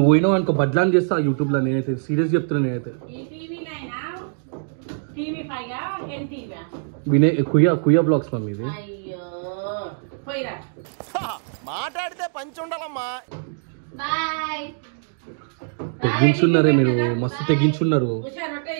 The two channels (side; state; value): left; silent; digital silence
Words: పోయినావు అనుకో బడ్లాన్ చేస్తా యూట్యూబ్లో. నేనైతే సీరియస్ చెప్తున్నా. నేనైతే వినయ్ కుయ్యా బ్లాగ్స్ మమ్మీ ఇది. మాట్లాడితే పంచి ఉండాలమ్మా. బాయ్. తెగించున్నారే మీరు, మస్తు తెగించున్నారు.